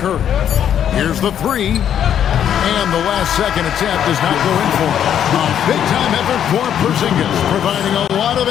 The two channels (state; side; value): quieter; right; 9.5 dB